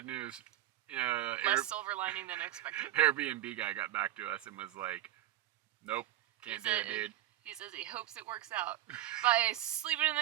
news. Less silver lining than expected. Airbnb guy got back to us and was like, nope, can't do it, dude. He says he hopes it works out. By sleeping in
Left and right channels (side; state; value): left; quieter; 13.9 dB